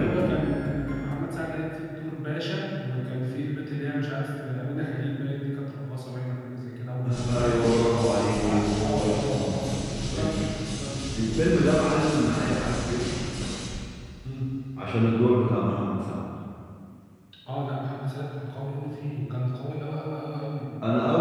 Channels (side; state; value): both; identical; correlation 1.00